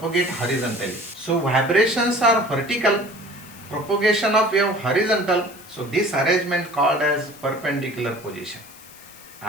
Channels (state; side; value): noise; left; hiss, 21 dB below the sound